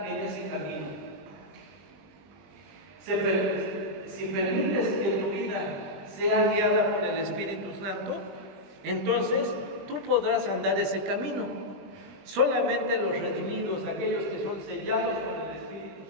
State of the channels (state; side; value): late; left; 20 ms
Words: en ese camino. Si permites que tu vida sea guiada por el Espíritu Santo, entonces tú podrás andar ese camino. Solamente los redimidos, aquellos que son sellados por el